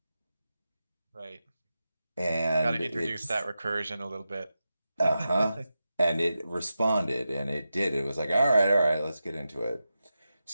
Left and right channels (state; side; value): inverted; both; correlation -0.91